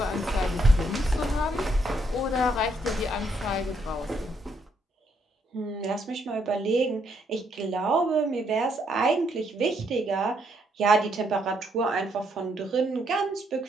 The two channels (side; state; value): both; normal; correlation 0.74